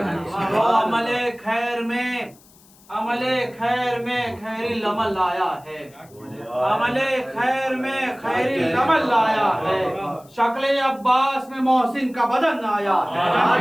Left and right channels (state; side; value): noise; left; hiss, 27 dB below the sound